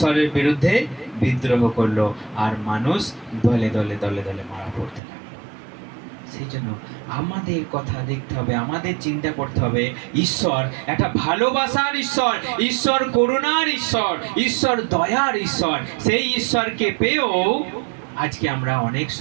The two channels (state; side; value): drops out; left; at 5.0 s